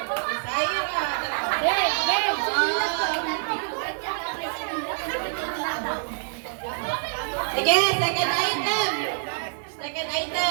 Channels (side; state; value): left; silent; digital silence